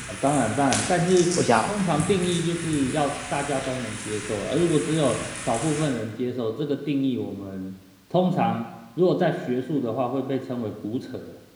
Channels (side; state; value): both; identical; correlation 1.00